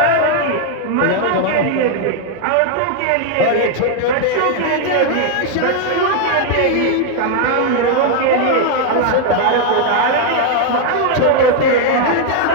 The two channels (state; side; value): different; both; correlation 0.00